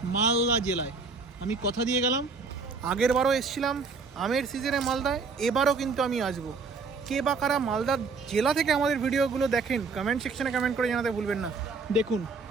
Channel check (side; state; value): left; quieter; 4.5 dB